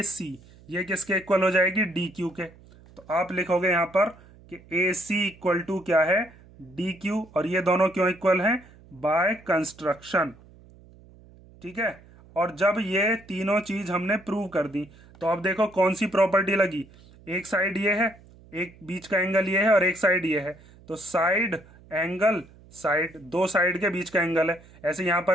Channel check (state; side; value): noise; right; hum, 24 dB below the sound